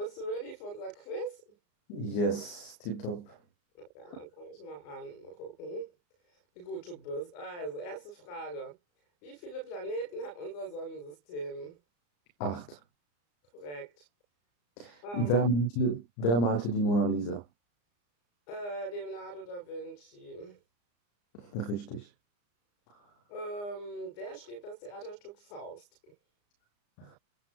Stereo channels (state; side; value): late; right; 34 ms